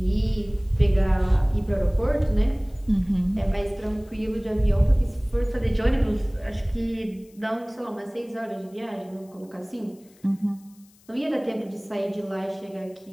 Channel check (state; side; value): noise; left; hiss, 29 dB below the sound